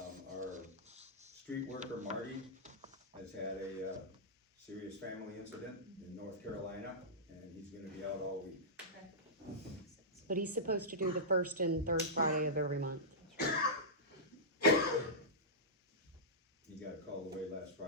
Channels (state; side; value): normal; both; correlation -0.15